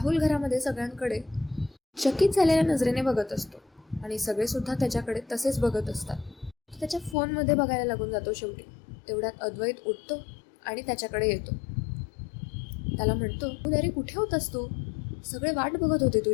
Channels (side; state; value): right; drops out; at 7.2 s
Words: घरामध्ये सगळ्यांकडे चकित झालेल्या नजरेने बघत असतो आणि सगळेसुद्धा त्याच्याकडे तसेच बघत असतात. तो त्याच्या फोनमध्ये बघायला लागून जातो शेवटी. तेवढ्यात अद्वैत उठतो आणि त्याच्याकडे येतो. त्याला म्हणतो, अरे कुठे होतास तू? सगळे वाट बघत होते